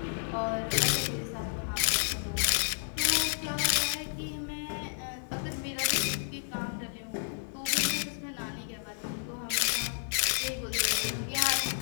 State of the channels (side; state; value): right; silent; digital silence